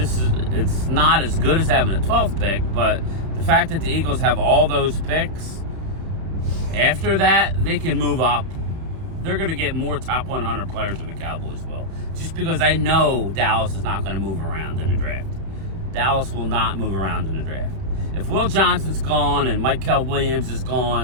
it's not as good as having a 12th pick, but the fact that the Eagles have all those picks, after that, they can move up. They're going to get more top 100 players than the Cowboys will. Just because I know Dallas is not going to move around in the draft. Dallas will not move around in the draft. If Will Johnson's gone and Michael Williams is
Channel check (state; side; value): late; left; 31 ms